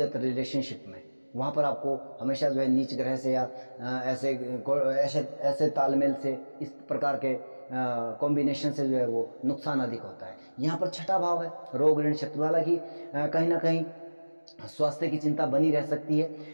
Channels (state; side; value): inverted; both; correlation -1.00